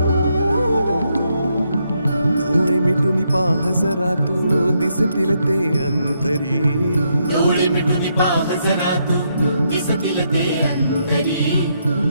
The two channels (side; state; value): both; inverted; correlation -0.78